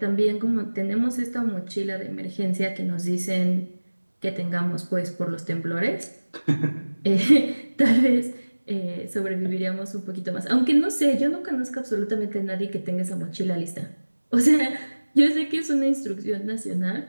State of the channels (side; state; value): both; inverted; correlation -1.00